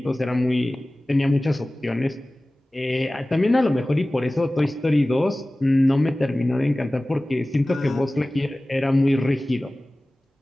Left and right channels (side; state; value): both; normal; correlation 0.98